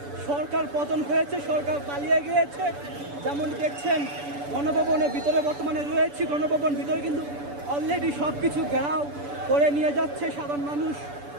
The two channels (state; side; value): late; left; 6.9 ms